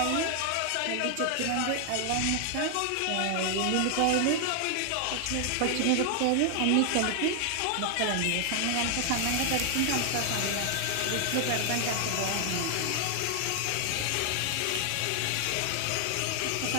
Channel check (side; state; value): both; different; correlation 0.00